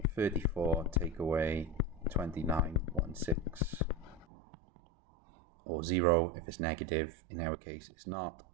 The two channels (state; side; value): drops out; left; at 4.2 s